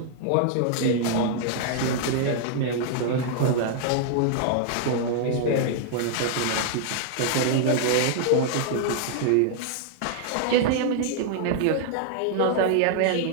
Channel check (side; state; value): both; different; correlation -0.01